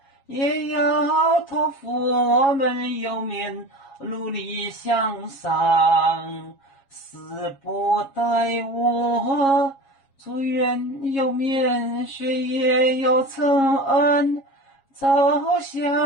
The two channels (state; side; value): late; right; 7.3 ms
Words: 也要托付我们有面努力向上。死不待我，祝愿有面学业有成，走